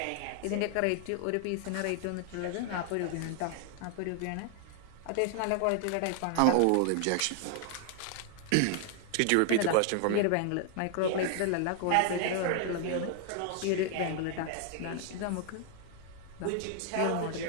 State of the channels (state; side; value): different; both; correlation 0.00